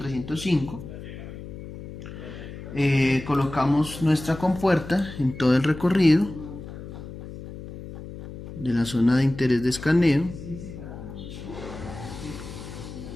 Colocamos nuestra compuerta en todo el recorrido de la zona de interés de escaneo.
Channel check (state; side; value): noise; left; hum, 12 dB below the sound